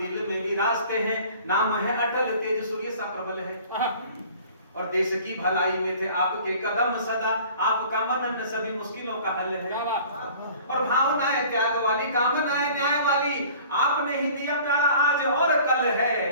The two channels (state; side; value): inverted; both; correlation -0.49